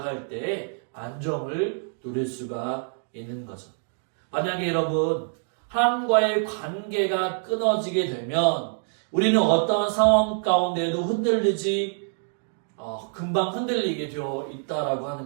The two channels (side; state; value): left; silent; digital silence